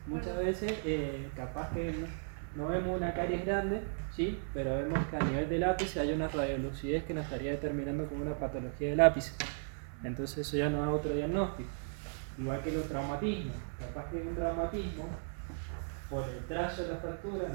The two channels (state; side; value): silent; left; 54 dB below the other